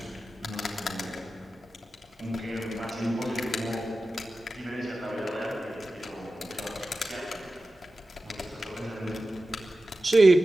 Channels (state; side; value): normal; both; correlation 0.94